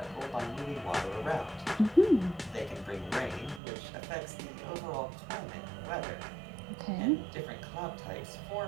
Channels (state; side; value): drops out; left; at 3.6 s